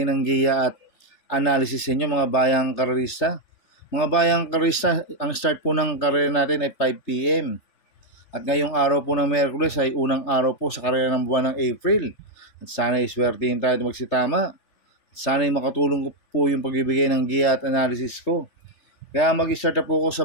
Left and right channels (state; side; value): late; right; 3.3 ms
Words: ng giya at analysis sa inyo mga bayang karerista. Mga bayang karerista, ang start po ng karera natin ay 5 PM. At ngayong araw po ng Miyerkules ay unang araw po sa karera ng buwan ng April. At sana iswertihin tayo magsitama. Sana makatulong po yung pagbibigay ng giya at analysis ko. Kaya mag-start na po ako